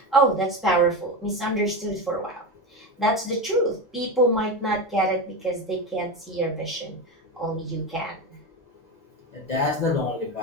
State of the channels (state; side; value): normal; both; correlation 0.18